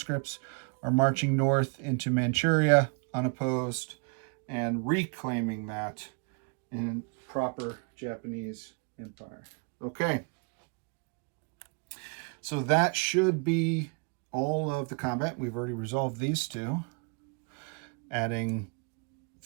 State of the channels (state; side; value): quieter; left; 35.7 dB